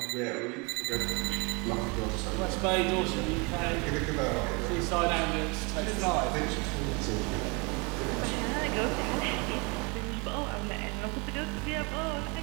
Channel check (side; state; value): left; quieter; 29.0 dB